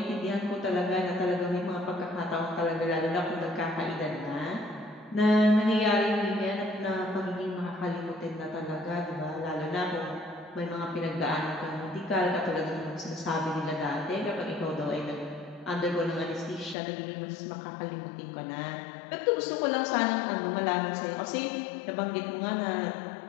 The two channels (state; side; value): drops out; right; at 16.8 s